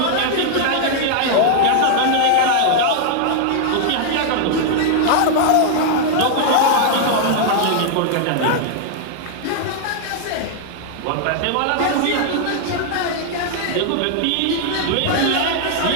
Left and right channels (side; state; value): both; different; correlation 0.00